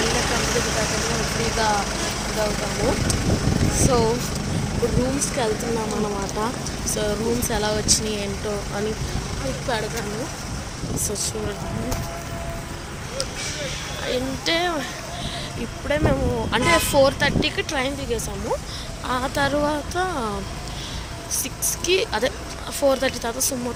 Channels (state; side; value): identical; both; correlation 1.00